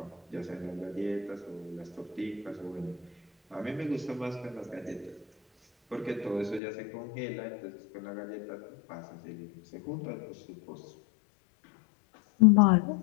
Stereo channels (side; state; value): right; drops out; at 6.6 s